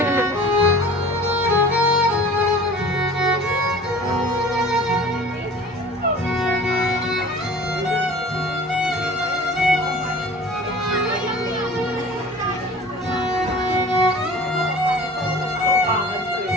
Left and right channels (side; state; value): both; normal; correlation 0.43